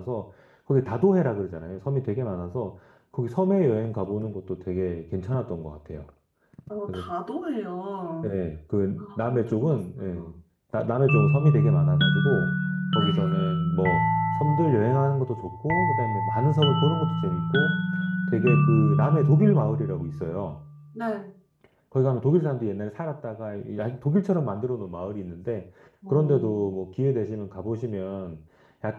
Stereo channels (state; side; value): identical; both; correlation 1.00